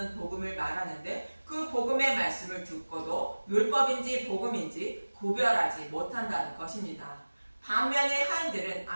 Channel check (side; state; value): both; inverted; correlation -1.00